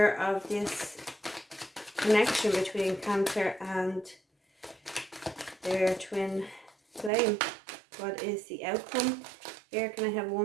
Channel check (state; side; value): drops out; left; at 7.1 s